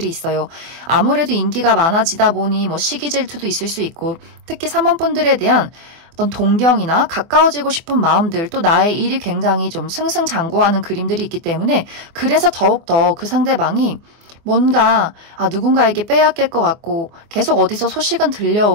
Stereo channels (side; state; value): left; late; 24 ms